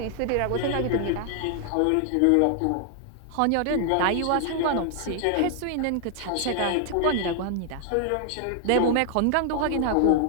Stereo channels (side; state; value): both; different; correlation 0.00